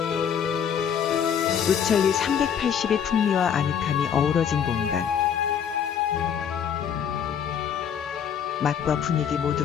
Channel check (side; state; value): right; quieter; 8.1 dB